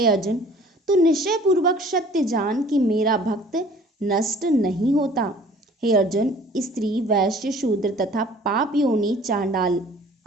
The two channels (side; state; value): both; normal; correlation 0.51